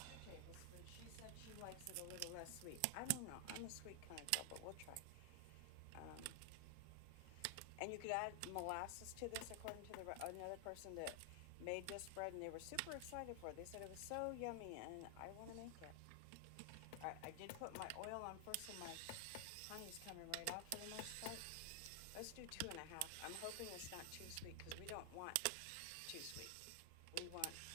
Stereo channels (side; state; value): both; different; correlation 0.00